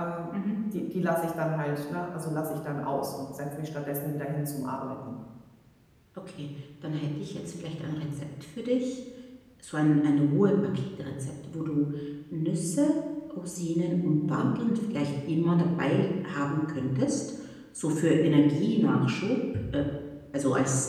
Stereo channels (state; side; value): identical; both; correlation 1.00